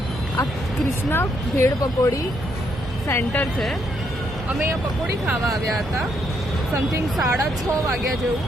આ કૃષ્ણા ભેળ પકોડી સેન્ટર છે. અમે અહીંયા પકોડી ખાવા આવ્યા હતા. સમથિંગ 6:30 વાગ્યા જેવું.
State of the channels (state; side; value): normal; both; correlation 0.75